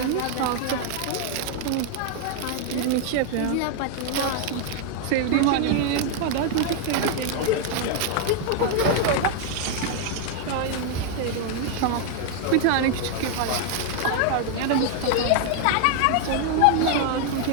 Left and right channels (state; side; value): different; both; correlation 0.00